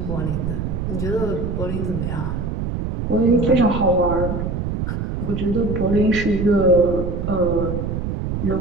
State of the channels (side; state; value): right; noise; rumble, 3 dB below the sound